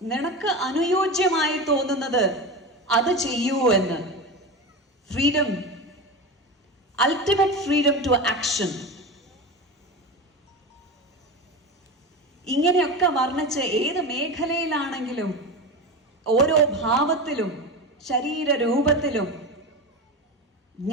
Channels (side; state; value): both; normal; correlation 0.24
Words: നിനക്ക് അനുയോജ്യമായി തോന്നുന്നത് അത് ചെയ്യൂ എന്ന്. Freedom, ultimate freedom to action. ഇങ്ങനെയൊക്കെ വർണ്ണിച്ച് ഏത് മേഖലയിലാണെങ്കിലും ഓരോ ഭാവത്തിലും ശരീരരൂപത്തിലും